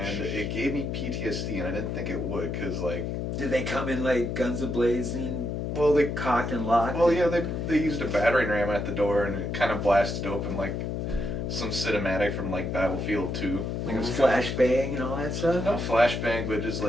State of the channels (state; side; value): noise; left; hum, 2 dB below the sound